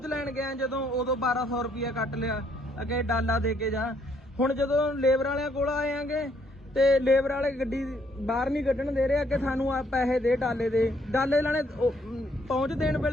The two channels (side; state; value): both; normal; correlation 0.69